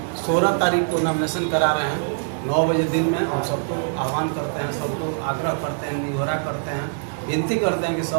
16 तारीख को नॉमिनेशन करा रहे हैं 9 बजे दिन में। हम सबको आह्वान करते हैं, सबको आग्रह करते हैं, निहोरा करते हैं, विनती करते हैं कि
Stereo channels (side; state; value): left; silent; 59 dB below the other